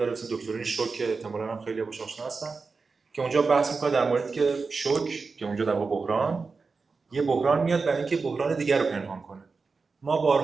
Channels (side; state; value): left; quieter; 4.5 dB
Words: اسمش دکترین شوک که احتمالاً هم خیلی باهاش آشنا هستن، که اونجا بحث میکنه در موردی که شوک، که اونجا در واقع یه بحران میاد برای اینکه بحران دیگر رو پنهان کنه. ما